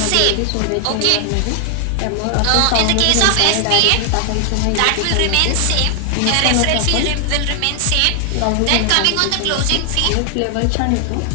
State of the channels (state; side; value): different; both; correlation 0.00